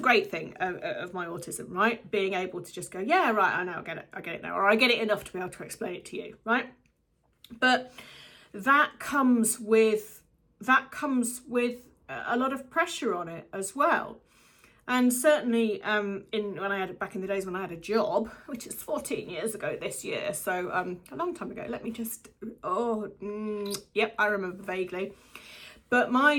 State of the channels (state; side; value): identical; both; correlation 1.00